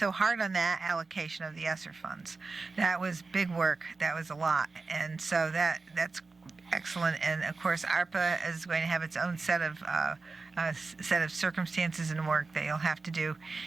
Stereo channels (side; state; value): left; quieter; 3.9 dB